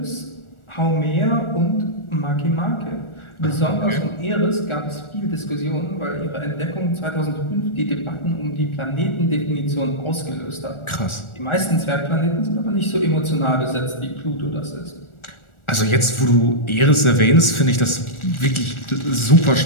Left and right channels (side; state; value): right; late; 1.4 ms